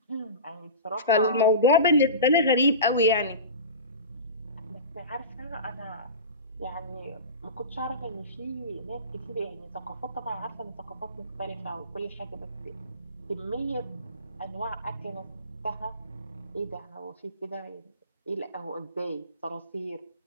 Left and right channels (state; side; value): inverted; both; correlation -0.31